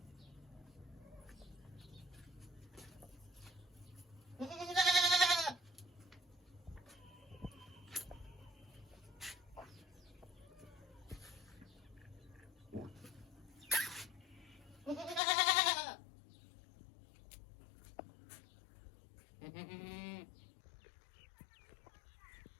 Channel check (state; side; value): drops out; right; at 15.2 s